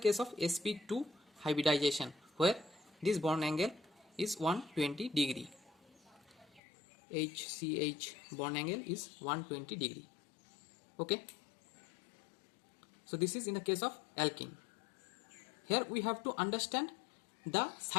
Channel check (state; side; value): drops out; right; at 6.6 s